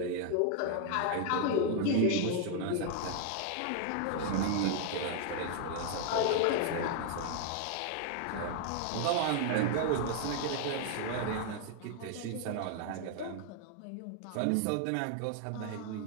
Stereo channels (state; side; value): different; both; correlation 0.00